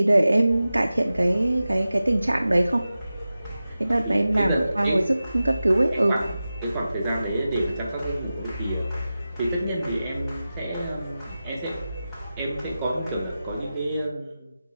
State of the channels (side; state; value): both; inverted; correlation -0.94